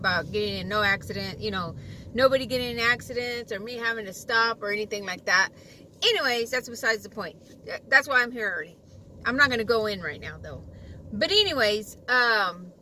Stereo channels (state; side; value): identical; both; correlation 1.00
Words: getting in no accident, you know, nobody getting in accidents or me having to stop or anything like that. Anyways, that's besides the point. That's why I'm here early. I'm not going to go in right now, though. But anyways,